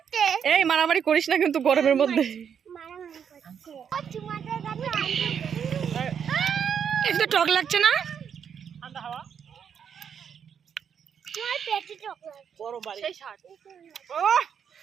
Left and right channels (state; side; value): quieter; left; 7.7 dB